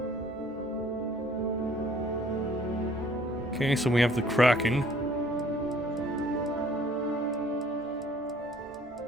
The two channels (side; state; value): both; normal; correlation 0.57